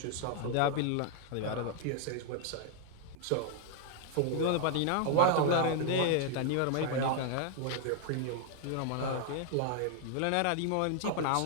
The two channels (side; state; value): both; different; correlation 0.00